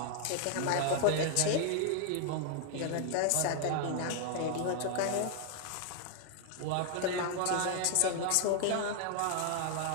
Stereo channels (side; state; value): both; different; correlation 0.00